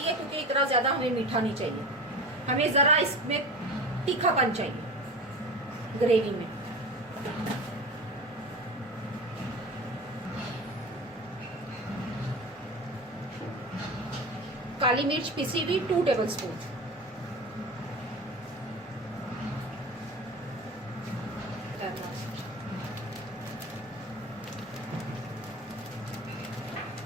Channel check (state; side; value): normal; both; correlation 0.32